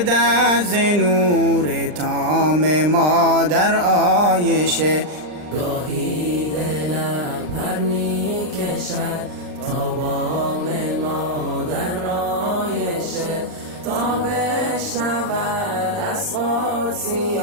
ز نور تام مادر عایشه. گاهی دلم پر می کشد تا بام مادر عایشه، تا بشنود از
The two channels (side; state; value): left; late; 39 ms